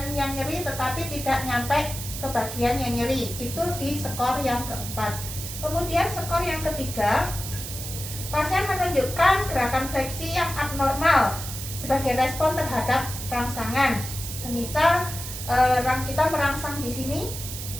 yang nyeri tetapi tidak nyampe ke bagian yang nyeri. Itu di skor yang keempat. Kemudian skor yang ketiga, pasien menunjukkan gerakan fleksi yang abnormal sebagai respon terhadap rangsangan. Semisal kita merangsang di sini,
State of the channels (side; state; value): right; noise; hiss, 8 dB below the sound